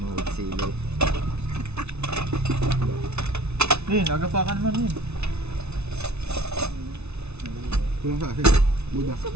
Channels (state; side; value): late; left; 0.81 ms